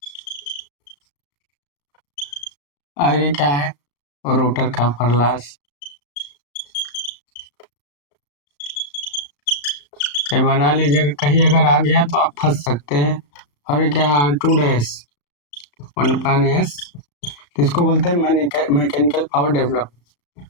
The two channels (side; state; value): right; late; 35 ms